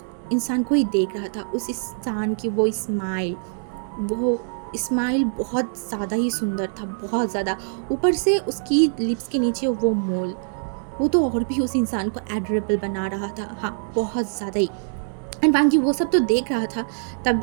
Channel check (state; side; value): silent; left; digital silence